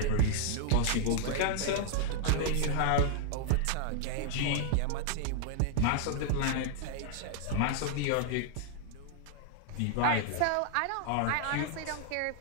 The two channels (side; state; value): both; different; correlation -0.01